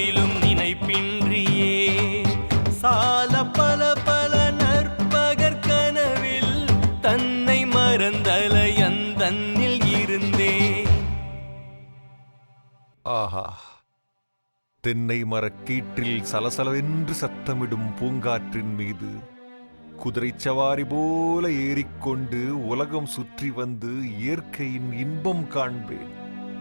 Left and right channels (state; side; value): inverted; both; correlation -1.00